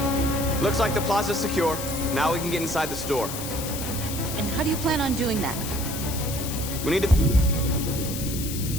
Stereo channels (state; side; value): noise; left; hiss, 7 dB below the sound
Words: Looks like the plaza's secure. Now we can get inside the store. And how do you plan on doing that? We need to